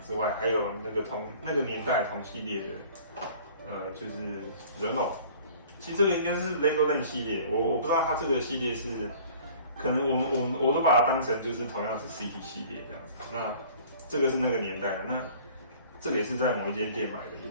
外，还有那个年代同系列的，就是人偶。其实这个应该是 Legoland 系列，我不知道它这个系列是，可能我都把它当成就是同样是 City 系列这样子。那这个是那个年代的，那这个也是在某一间店买的，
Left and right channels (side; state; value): both; inverted; correlation -0.48